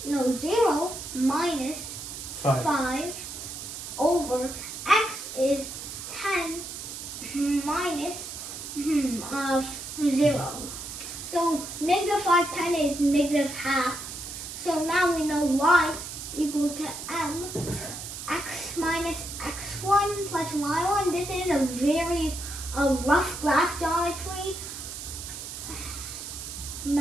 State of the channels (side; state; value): right; noise; hiss, 9 dB below the sound